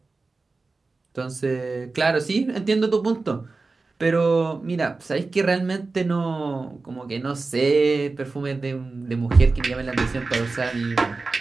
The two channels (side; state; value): left; quieter; 3.8 dB